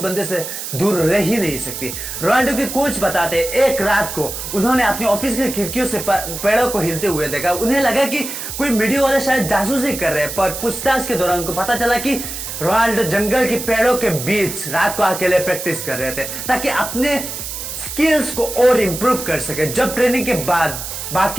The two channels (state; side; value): noise; right; hiss, 7 dB below the sound